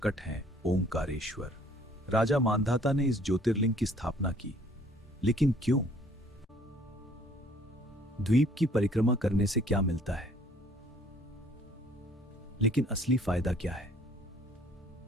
है ओमकारेश्वर। राजा मांधाता ने इस ज्योतिर्लिंग की स्थापना की, लेकिन क्यों? द्वीप की परिक्रमा करने से क्या मिलता है, लेकिन असली फायदा क्या है?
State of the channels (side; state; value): both; normal; correlation 0.58